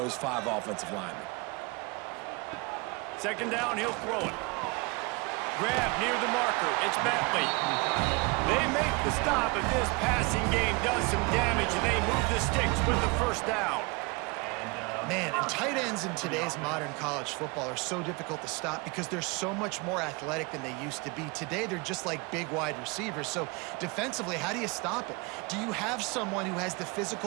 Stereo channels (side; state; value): left; quieter; 27.7 dB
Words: 5 offensive linemen. Second down, he'll throw it. Grab near the marker. It's Bentley. They make the stop, but this passing game does some damage, and they move the sticks with the first down. Man, and tight ends in today's modern college football are so difficult to stop because they're so much more athletic than they used to be. Today, they're just like big wide receivers. So defensively, how do you stop it? Do you have someone who has the